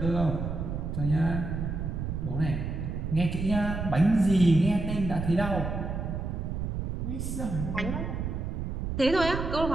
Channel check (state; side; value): noise; right; rumble, 3 dB below the sound